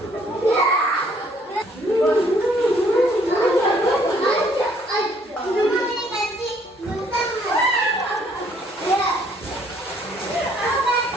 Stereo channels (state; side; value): normal; both; correlation 0.64